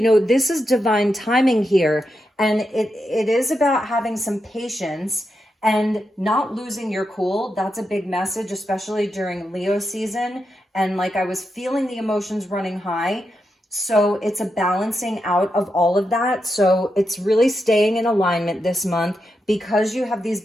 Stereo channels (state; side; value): normal; both; correlation 0.86